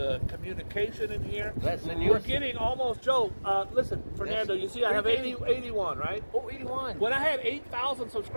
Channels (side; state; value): both; inverted; correlation -1.00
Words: communication in here. That's the We're news. getting almost, Joe, listen, Fernando, you see I have 81, right? Oh, 81. When I had 8,000